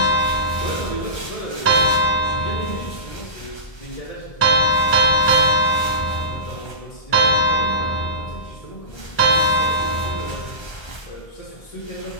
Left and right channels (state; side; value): late; right; 1.3 ms